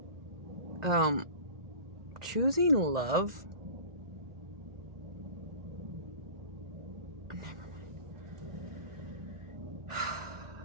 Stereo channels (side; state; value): left; late; 1.9 ms